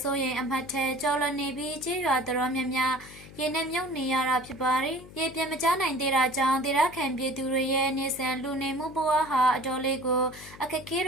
စိုးရိမ်အမှတ်ထဲကျော်လွန်နေပြီးကြေးရွာတော်များများရေနဲ့မြုပ်နေရတာဖြစ်ပါတယ်။ရေပြင်းမကျနိုင်သေးတာကြောင့်ဒေသခံပြည်သူတွေရဲ့နေဆန်လူနေမှုဘဝဟာအတော်လေးကိုအခက်အခဲ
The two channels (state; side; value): noise; left; hum, 18 dB below the sound